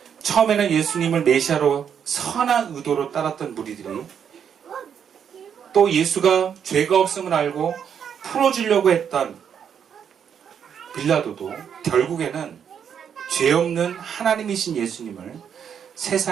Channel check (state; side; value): quieter; left; 8.0 dB